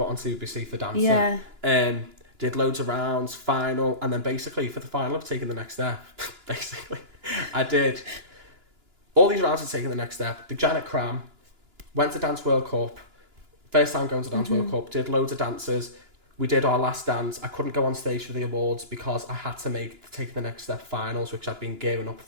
on CBBC for dancing. Yeah. Did loads of rounds, final, and then basically for the final of Taking the Next Step, basically, I did all these rounds of Taking the Next Step. The Janet Cram, went to Dance World Cup, first time going to Dance World Cup, did loads of dances. We did our last dance. I couldn't go on stage for the awards because I had to make the Taking the Next Step finals, which I'd been gearing up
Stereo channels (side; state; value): left; late; 2.9 ms